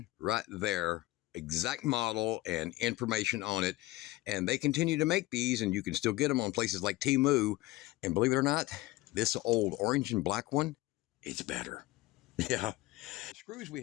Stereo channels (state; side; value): quieter; right; 18.4 dB